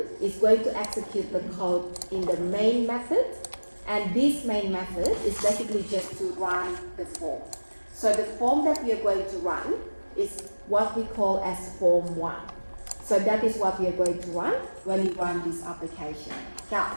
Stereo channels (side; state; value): both; inverted; correlation -1.00